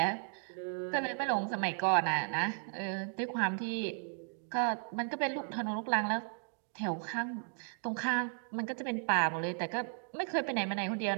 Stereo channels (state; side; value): silent; left; 54 dB below the other